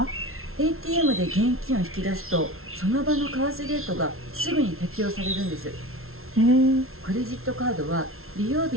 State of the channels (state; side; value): late; left; 0.62 ms